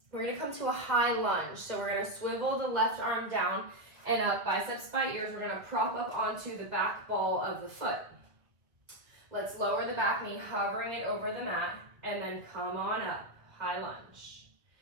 we're going to come to a high lunge. So we're going to swivel the left arm down and up, biceps by ears. We're going to prop up onto the back ball of the foot. Let's lower the back knee, hovering it over the mat, and then come on up. High lunge.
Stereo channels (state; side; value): late; left; 1.9 ms